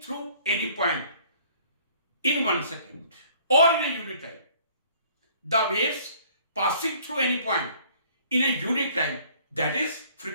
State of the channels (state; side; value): inverted; both; correlation -0.56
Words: through any point in 1 second or in a unit time. The waves passing through any point in a unit time, that is